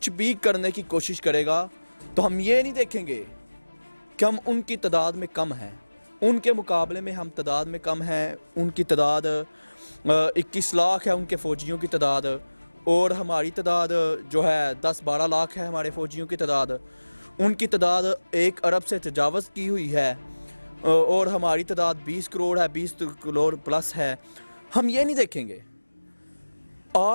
بھی کرنے کی کوشش کرے گا تو ہم یہ نہیں دیکھیں گے کہ ہم ان کی تعداد میں کم ہیں، ان کے مقابلے میں ہم تعداد میں کم ہیں۔ ان کی تعداد 21 لاکھ ہے، ان کے فوجیوں کی تعداد، اور ہماری تعداد جو ہے 10-12 لاکھ ہے ہمارے فوجیوں کی تعداد۔ ان کی تعداد 1 ارب سے تجاوز کی ہوئی ہے اور ہماری تعداد 20 کروڑ ہے، 20 کروڑ پلس ہے۔ ہم یہ نہیں دیکھیں گے۔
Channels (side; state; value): both; inverted; correlation -1.00